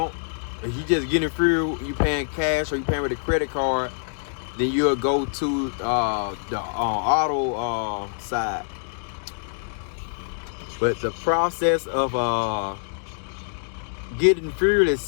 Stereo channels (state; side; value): silent; right; digital silence